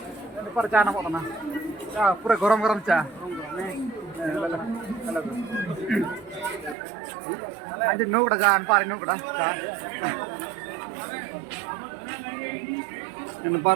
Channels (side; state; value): left; drops out; at 6.8 s